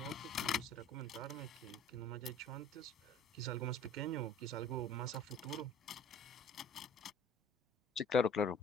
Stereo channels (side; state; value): both; normal; correlation 0.49